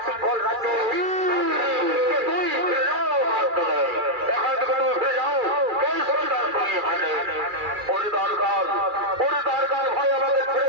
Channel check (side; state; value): left; late; 2.4 ms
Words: সিংহল রাজ্যে দরকার ভাই আমাদের ছেড়ে